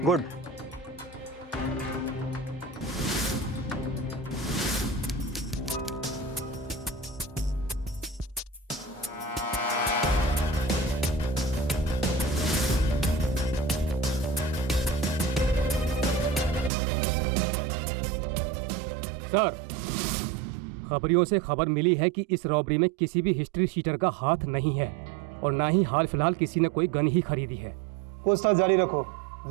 गुड। सर, खबरियों से खबर मिली है कि इस रॉबरी में किसी भी हिस्ट्री शीटर का हाथ नहीं है, और ना ही हाल फिलहाल किसी ने कोई गन ही खरीदी है। पूछताछ जारी रखो,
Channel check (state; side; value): drops out; left; at 16.7 s